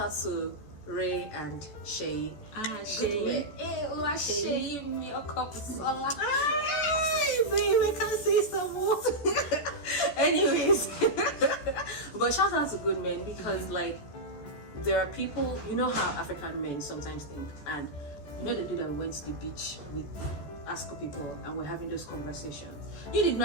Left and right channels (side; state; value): right; late; 14 ms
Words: to Ray and Shay. Shay. Shay, your cup of soda. Babe, I can't say some more. Anyways, but shout out to good men because like. There are people, you know how African men sometimes think, and you know the day that we went to the beach with ASCO people and we're having those conversations. You did